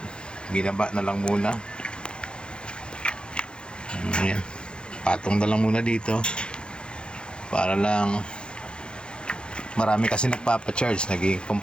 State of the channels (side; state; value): right; late; 0.052 ms